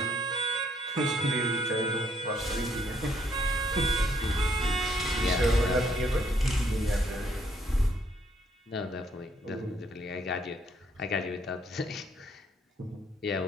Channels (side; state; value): both; normal; correlation 0.69